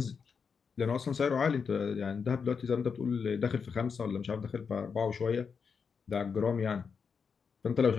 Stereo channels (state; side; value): quieter; right; 6.0 dB